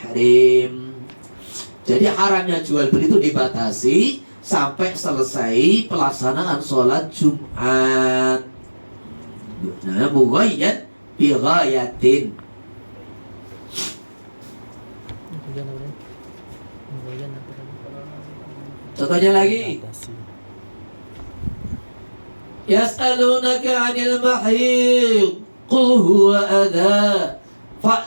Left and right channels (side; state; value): both; inverted; correlation -1.00